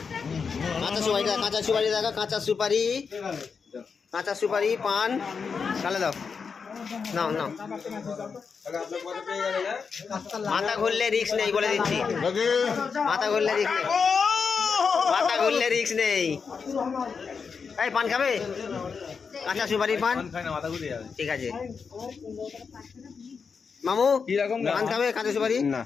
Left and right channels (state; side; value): quieter; right; 5.7 dB